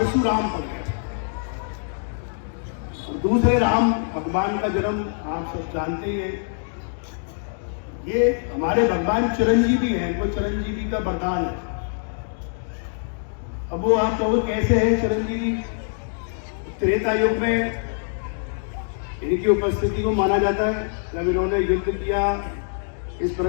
पड़ गया। और दूसरे राम भगवान का जन्म आप सब जानते ही हैं। ये हमारे भगवान चिरंजीवी हैं, इनको चिरंजीवी का वरदान है। अब वो आप कहोगे कैसे है चिरंजीवी? त्रेता युग में इनकी उपस्थिति को माना जाता है, जब इन्होंने युद्ध किया, इस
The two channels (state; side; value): silent; right; digital silence